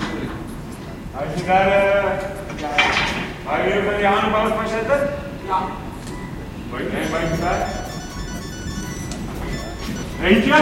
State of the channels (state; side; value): identical; both; correlation 1.00